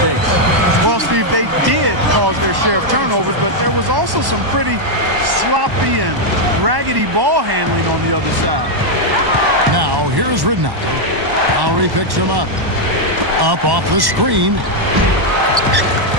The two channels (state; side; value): late; left; 1.1 ms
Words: Well, Steve, they did cause their share of turnovers, but there was also some pretty sloppy and raggedy ball handling on the other side. Now, here's Ridnour. Lowry picks him up. Up off the screen.